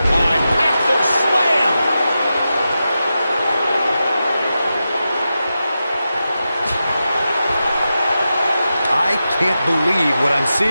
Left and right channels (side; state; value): both; inverted; correlation -0.91